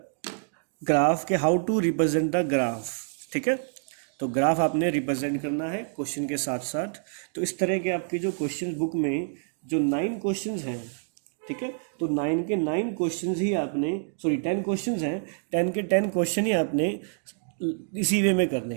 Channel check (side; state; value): left; silent; digital silence